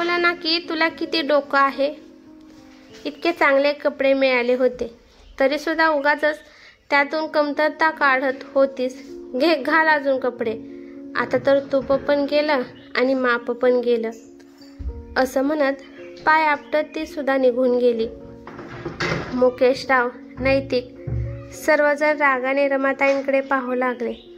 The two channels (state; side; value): identical; both; correlation 1.00